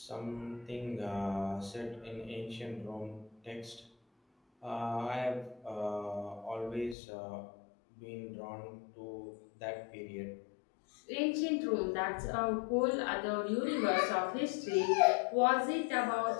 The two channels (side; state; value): right; drops out; at 7.0 s